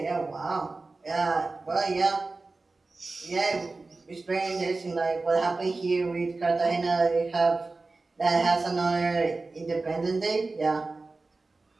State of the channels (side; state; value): left; quieter; 3.6 dB